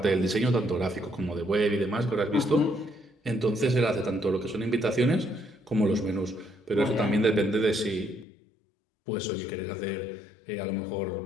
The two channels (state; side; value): drops out; right; at 8.2 s